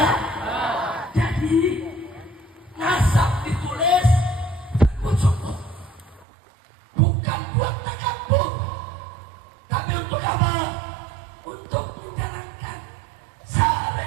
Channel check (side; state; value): left; drops out; at 6.2 s